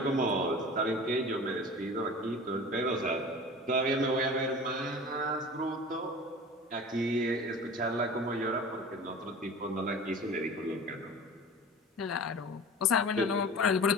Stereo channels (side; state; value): both; normal; correlation 0.38